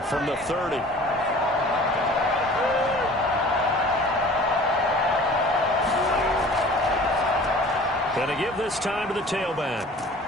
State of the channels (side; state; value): both; normal; correlation 0.45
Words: from the 30. Going to give this time to the tailback.